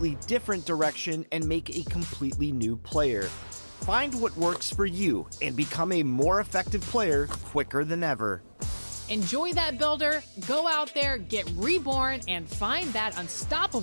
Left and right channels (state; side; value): inverted; both; correlation -1.00